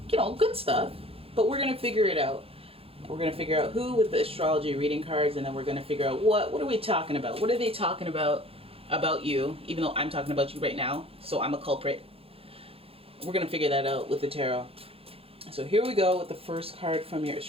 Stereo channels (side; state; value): left; late; 0.27 ms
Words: good stuff. But we're going to figure it out. We're going to figure out who with the astrology reading cards, and then we're going to figure out what are we talking about? What are they talking about you, even though I'm talking about you right now, so I'm a culprit. We're going to figure that out with the tarot. So here we go with the first card from your